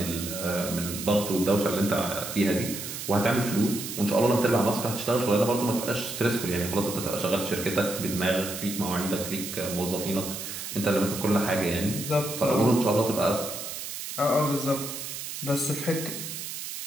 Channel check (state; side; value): noise; right; hiss, 7 dB below the sound